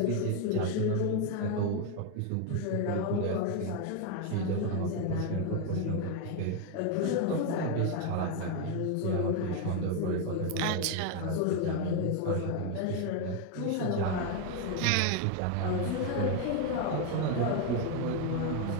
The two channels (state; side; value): different; both; correlation 0.01